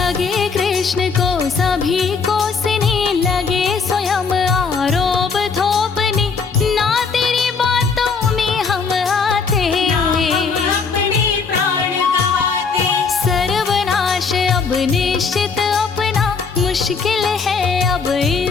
कृष्ण को सभी कोसने, लगे स्वयं आरोप थोपने, ना तेरी बातों में हम आते, हम अपने प्राण गवाते। सर्वनाश अब निश्चित अपना, मुश्किल है अब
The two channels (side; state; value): right; quieter; 5.2 dB